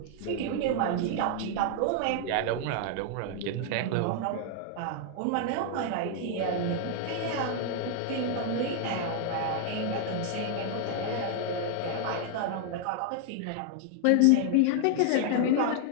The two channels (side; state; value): both; different; correlation 0.00